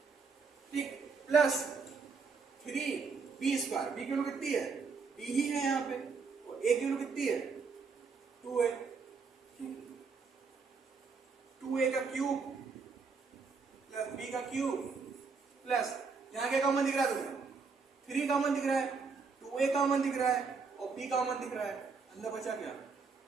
ठीक, प्लस 3b², b की वैल्यू कितनी है? b ही है यहाँ पे, और a की वैल्यू कितनी है? 2a। 2a का क्यूब प्लस b का क्यूब प्लस, यहाँ क्या कॉमन दिख रहा है तुम्हें? 3 कॉमन दिख रहा है, 2a कॉमन दिख रहा है और b कॉमन दिख रहा है। अंदर बचा क्या?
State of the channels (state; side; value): quieter; left; 4.9 dB